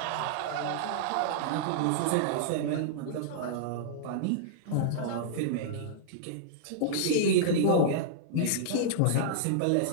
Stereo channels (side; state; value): both; different; correlation -0.02